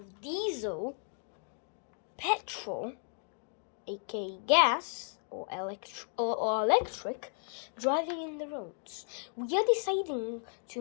diesel, petrol, aka gas, or electric, driving in the roads. We are deciding to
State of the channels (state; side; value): silent; right; 55 dB below the other